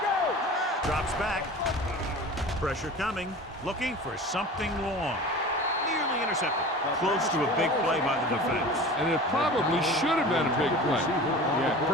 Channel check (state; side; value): normal; both; correlation 0.37